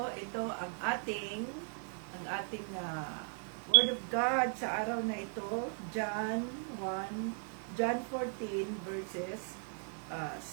ang ating Word of God sa araw na ito, John 14 verses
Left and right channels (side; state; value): left; silent; 53 dB below the other